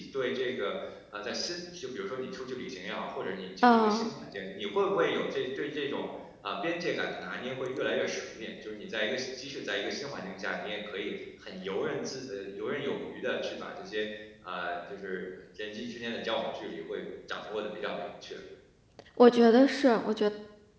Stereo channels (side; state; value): both; identical; correlation 1.00